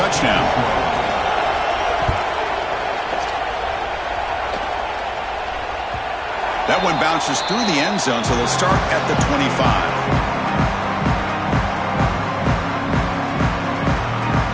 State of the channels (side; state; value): both; identical; correlation 1.00